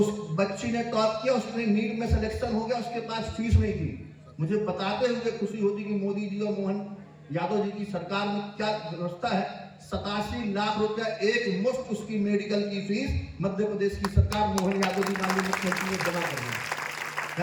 बच्ची ने टॉप किया, उसने नीट में सिलेक्शन हो गया, उसके पास फीस नहीं थी। मुझे बताते हुए खुशी होती कि मोदी जी और मोहन यादव जी की सरकार में क्या व्यवस्था है। 87 लाख रुपया एक मुफ्त उसकी मेडिकल की फीस मध्य प्रदेश की सरकार मोहन यादव जी माननीय मुख्यमंत्री ने जमा कर दी।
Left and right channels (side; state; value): both; identical; correlation 1.00